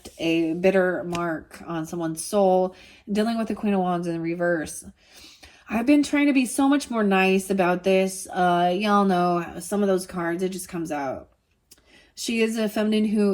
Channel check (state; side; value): identical; both; correlation 1.00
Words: a bitter mark on someone's soul. Dealing with the Queen of Wands in reverse. I've been trying to be so much more nice about this. Y'all know some of those cards, it just comes out. She is a feminine who